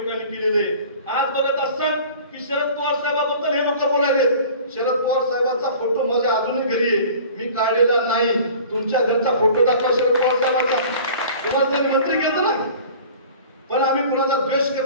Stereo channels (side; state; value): both; inverted; correlation -0.44